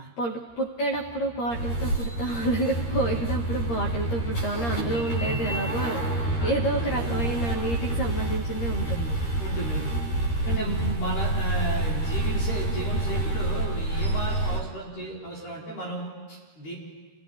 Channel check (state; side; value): late; right; 13 ms